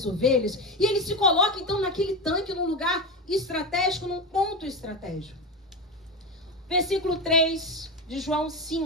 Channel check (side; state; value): both; normal; correlation 0.19